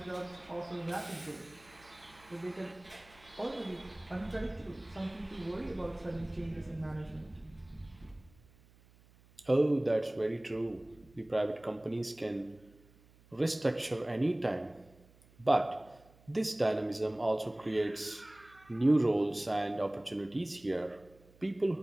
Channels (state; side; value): noise; right; hum, 27 dB below the sound